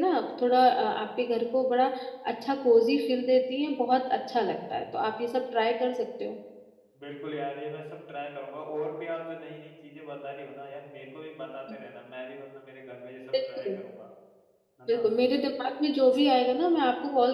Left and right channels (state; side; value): identical; both; correlation 1.00